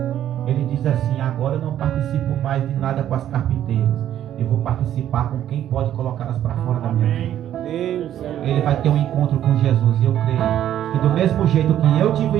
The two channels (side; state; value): left; quieter; 11.2 dB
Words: ele diz assim: agora eu não participo mais de nada com as carpinteiras. Eu vou participar com quem pode colocá-las para fora da minha vida. Ele vai ter um encontro com Jesus. E eu creio que do mesmo jeito que eu tive um